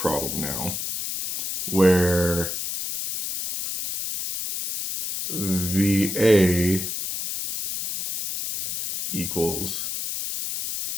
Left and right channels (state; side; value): noise; left; hiss, 4 dB below the sound